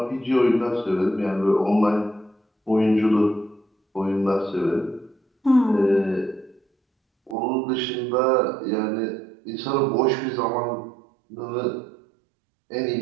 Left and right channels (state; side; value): drops out; left; at 7.4 s